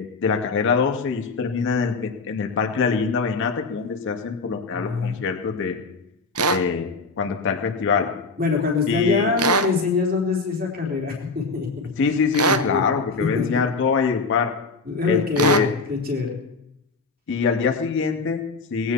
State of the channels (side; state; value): right; quieter; 4.0 dB